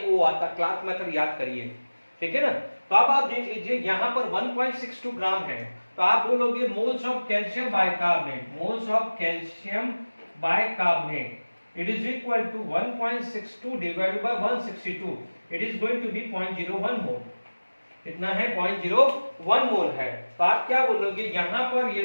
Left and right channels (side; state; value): both; inverted; correlation -1.00